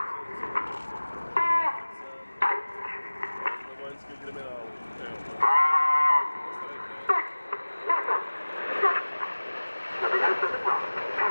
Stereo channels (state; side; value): inverted; both; correlation -1.00